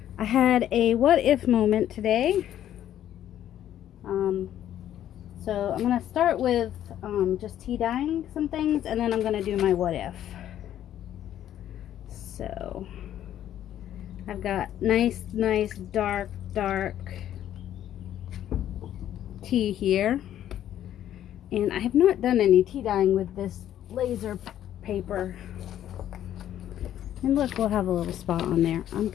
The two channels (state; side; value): quieter; right; 11.4 dB